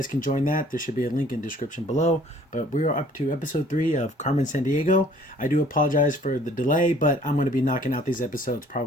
can join that. There should be a link in the description below. But we are up to episode 3 of Carmen, Sandiego. I do apologize for the delay, but I'm going to be knocking out these episodes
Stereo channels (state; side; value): normal; both; correlation 0.56